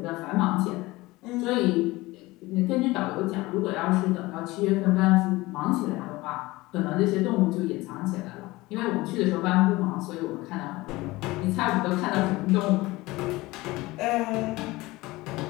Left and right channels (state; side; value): quieter; right; 20.3 dB